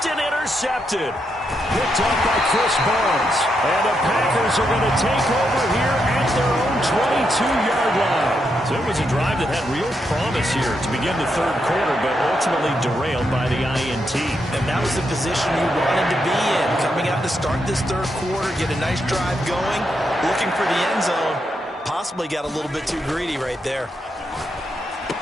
and intercepted. Picked up by Chris Barnes. And the Packers are going to take over here at their own 22-yard line. So it was a drive that had real promise here to begin the third quarter, but ultimately derailed by the INT. And that was the position you wanted to be in. Coming out to start this third quarter, get a nice drive going, looking for the end zone. Possibly got a little bit too greedy right there.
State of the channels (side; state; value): both; normal; correlation 0.81